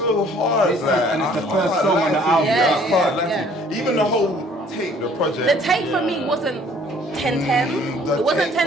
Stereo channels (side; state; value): both; normal; correlation 0.57